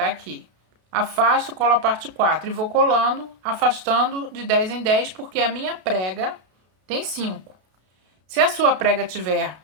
aqui. Afasto, colo a parte 4 e vou colando, afastando de 10 em 10, porque a minha prega tem 5. Se a sua prega tiver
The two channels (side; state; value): left; late; 32 ms